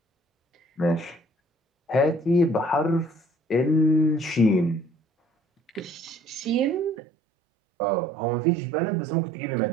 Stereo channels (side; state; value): left; drops out; at 7.0 s